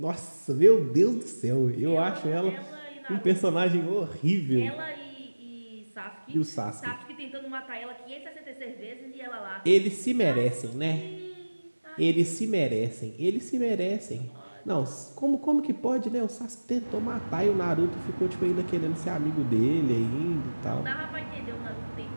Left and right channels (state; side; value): inverted; both; correlation -1.00